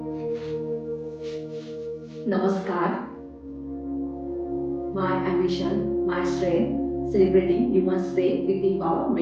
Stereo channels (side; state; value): both; identical; correlation 1.00